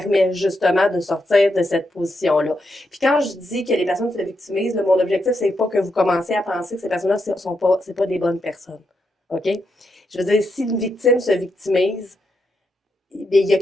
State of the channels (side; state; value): both; normal; correlation 0.82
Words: justement de sortir de cette position-là. Puis quand je dis que les personnes se victimisent, là, mon objectif, c'est pas que vous commencez à penser que ces personnes-là, c'est pas des bonnes personnes. OK? Je veux dire, si une victime se victimise,